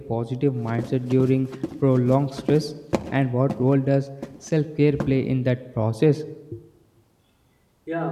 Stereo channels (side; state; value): both; identical; correlation 1.00